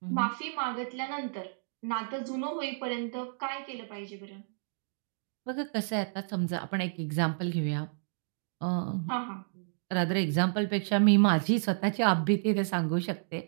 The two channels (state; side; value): silent; left; digital silence